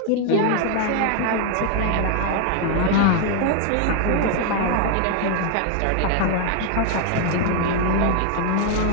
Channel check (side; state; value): both; different; correlation 0.01